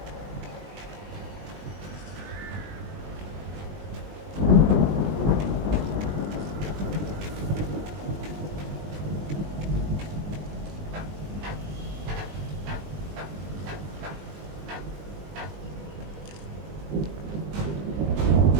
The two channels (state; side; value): late; left; 20 ms